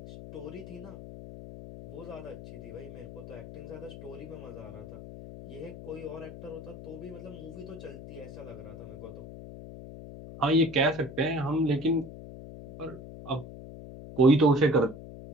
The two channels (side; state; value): left; noise; hum, 12 dB below the sound